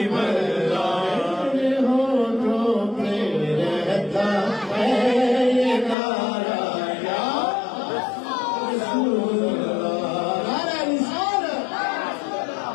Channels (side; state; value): right; drops out; at 6.0 s